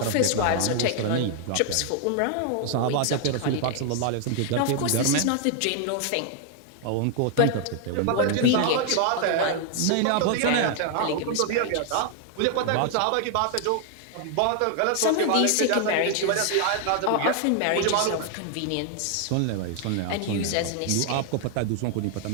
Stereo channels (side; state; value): both; different; correlation 0.00